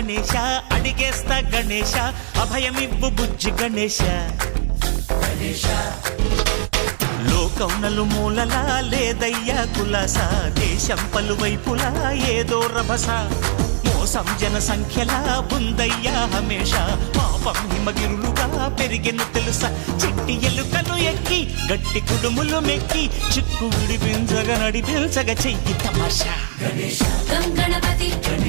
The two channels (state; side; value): silent; left; digital silence